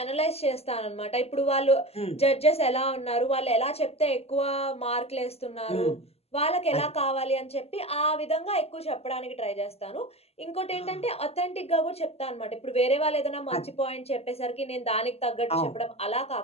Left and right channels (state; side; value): late; right; 0.29 ms